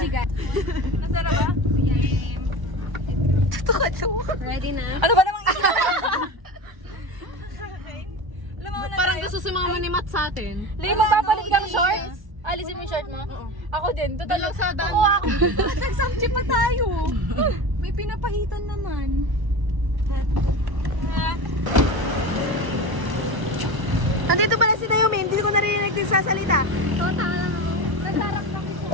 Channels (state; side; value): late; left; 1.0 ms